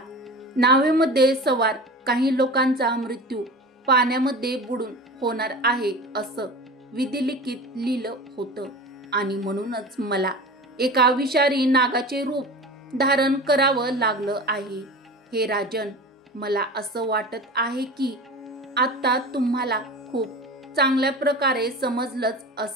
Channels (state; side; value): normal; both; correlation 0.34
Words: नावेमध्ये सवार काही लोकांचा मृत्यू पाण्यामध्ये बुडून होणार आहे असं विधिलिखित लिहिलं होतं आणि म्हणूनच मला एका विषारी नागाचे रूप धारण करावं लागलं आहे. हे राजन, मला असं वाटत आहे की आता तुम्हाला खूप चांगल्या प्रकारे समजलंच